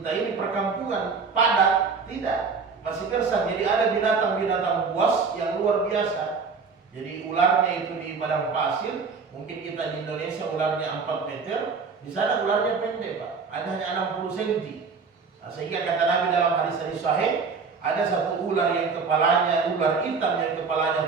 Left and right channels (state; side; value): quieter; left; 5.1 dB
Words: ini, perkampungan padat, tidak, masih gersang. Jadi ada binatang-binatang buas yang luar biasa. Jadi ularnya itu di padang pasir, mungkin kita di Indonesia ularnya 4 meter, di sana ularnya pendek Pak, ada hanya 60 cm. Nah, sehingga kata Nabi dalam hadis sahih, ada satu ular yang kepalanya, ular hitam yang